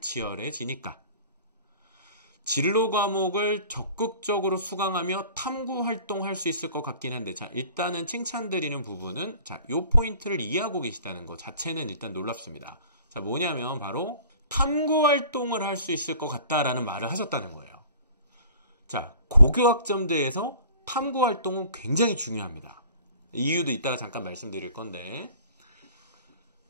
치열해지니까. 진로 과목을 적극적으로 수강하며 탐구 활동할 수 있을 것 같긴 한데, 자, 일단은 칭찬드리는 부분은, 자, 요 포인트를 이해하고 계시다는 것 자체는 일단 놀랍습니다. 자, 뭐냐면 바로 탐구 활동을 할 수 있을 것 같다라는 말을 하셨다는 거예요. 자, 고교학점제에서 탐구 활동은 굉장히 중요합니다. 이유도 이따가 잠깐 말씀드릴 건데,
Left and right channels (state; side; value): inverted; both; correlation -0.47